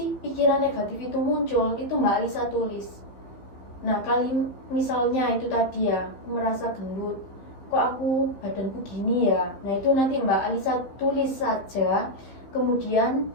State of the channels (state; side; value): late; right; 15 ms